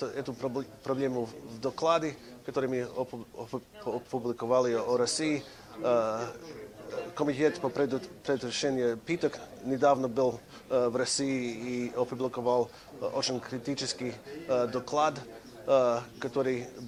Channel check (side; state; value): both; identical; correlation 1.00